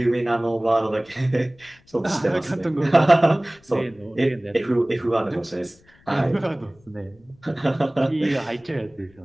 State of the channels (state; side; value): noise; left; rumble, 30 dB below the sound